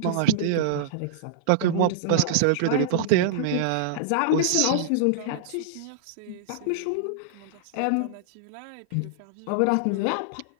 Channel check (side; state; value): both; different; correlation -0.02